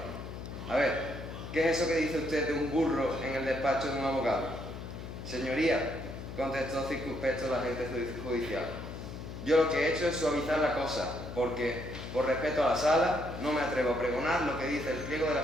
A ver, ¿qué es eso que dice usted de un burro en el despacho de un abogado? Señoría, contestó circunspecto el agente judicial, yo lo que he hecho es suavizar la cosa, porque, por respeto a la sala, no me atrevo a pregonar lo que dice el pliego de la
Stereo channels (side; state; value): left; noise; hum, 9 dB below the sound